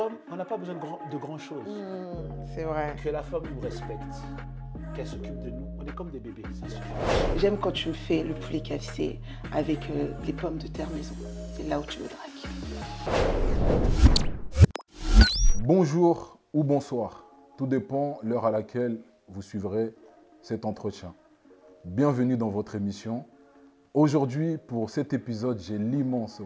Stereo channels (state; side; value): identical; both; correlation 1.00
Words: on n'a pas besoin de grand chose. C'est vrai. Que la femme nous respecte, qu'elle s'occupe de nous. On est comme des bébés, ça suffit. J'aime quand tu me fais le poulet KFC avec les pommes de terre maison. C'est là où tu me dragues. Bonjour ou bonsoir, tout dépend l'heure à laquelle vous suivrez cet entretien. Bienvenue dans votre émission. Aujourd'hui, pour cet épisode, j'ai l'immense